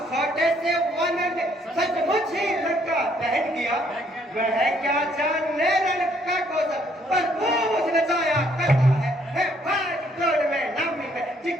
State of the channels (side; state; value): both; normal; correlation 0.67